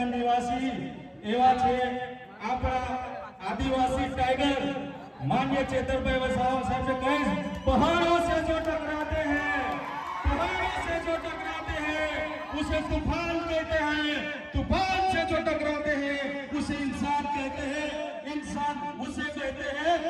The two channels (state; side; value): identical; both; correlation 1.00